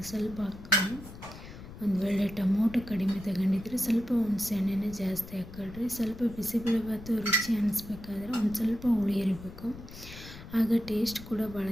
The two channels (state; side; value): noise; left; rumble, 15 dB below the sound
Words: ಸ್ವಲ್ಪ ಹಾಕ್ಕೊಳ್ಳಿ. ಒಂದು ವೇಳೆ ಟೊಮೊಟೊ ಕಡಿಮೆ ತಗೊಂಡಿದ್ರೆ ಸ್ವಲ್ಪ ಹುಣಸೆ ಹಣ್ಣನ್ನೇ ಜಾಸ್ತಿ ಹಾಕ್ಕೊಳ್ರಿ. ಸ್ವಲ್ಪ ಬಿಸಿಬೇಳೆಭಾತು ರುಚಿ ಅನ್ನಿಸ್ಬೇಕಾದ್ರೆ ಒಂದು ಸ್ವಲ್ಪ ಹುಳಿ ಇರಬೇಕು, ಆಗ ಟೇಸ್ಟ್ ಕೂಡ ಭಾಳ